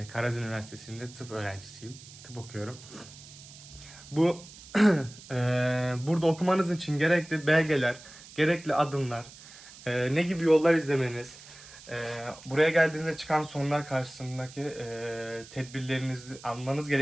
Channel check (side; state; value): right; noise; hiss, 18 dB below the sound